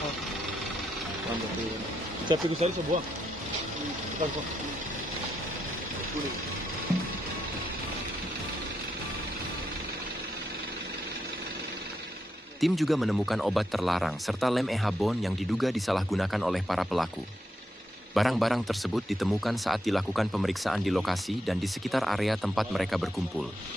Saya pikir saya sebuah. Bukan kok. Kuning. Tim juga menemukan obat terlarang serta lem ehabon yang diduga disalahgunakan oleh para pelaku. Barang-barang tersebut ditemukan saat dilakukan pemeriksaan di lokasi dan di sekitar area tempat mereka berkumpul.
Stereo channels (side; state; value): both; normal; correlation 0.82